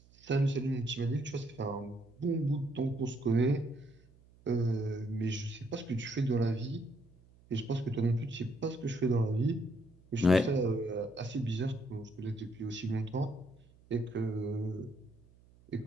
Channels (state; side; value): noise; right; hum, 27 dB below the sound